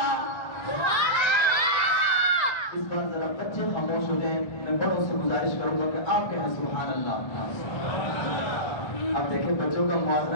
इस बार जरा बच्चे खामोश हो जाएं, मैं बड़ों से गुजारिश करूंगा कि आप कहें सुभान अल्लाह। अब देखें बच्चों का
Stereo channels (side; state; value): right; late; 1.3 ms